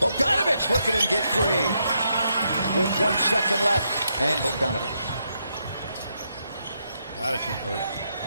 look at him get free with 1 second left. And Bogdanovich. Got to convert.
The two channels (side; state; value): both; inverted; correlation -0.79